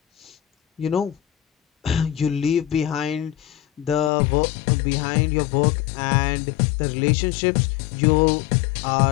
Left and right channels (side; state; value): right; drops out; at 4.1 s